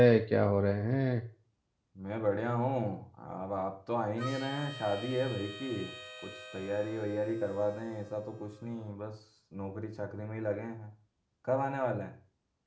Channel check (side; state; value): both; identical; correlation 1.00